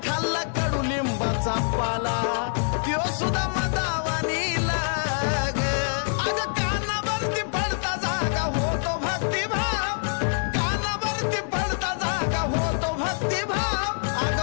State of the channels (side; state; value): right; silent; 61 dB below the other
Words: खाल्ला कडुलिंबाचा पाला त्यो सुद्धा मदावानी लाग अग कानावरती पडता जागा होतो भक्तिभाव कानावरती पडता जागा होतो भक्तिभाव अग